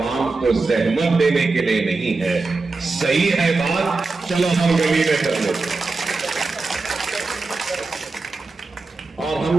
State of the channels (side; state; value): left; quieter; 3.8 dB